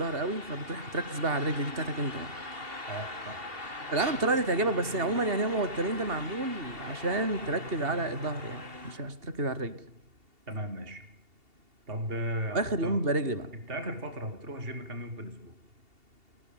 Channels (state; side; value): late; left; 2.7 ms